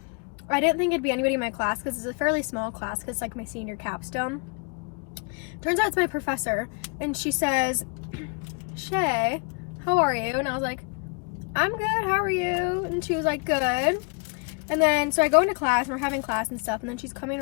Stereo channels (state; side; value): quieter; right; 32.0 dB